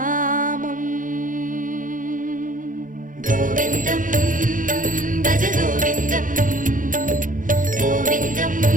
கோவிந்தம் பஜ கோவிந்தம், கோவிந்தம்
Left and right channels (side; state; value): left; late; 0.39 ms